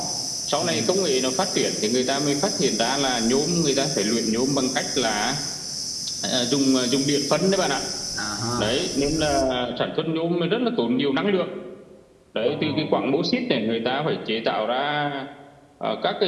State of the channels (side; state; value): both; identical; correlation 1.00